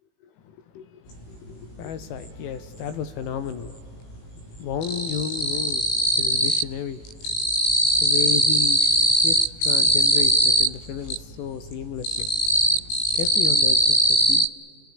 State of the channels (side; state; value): right; late; 18 ms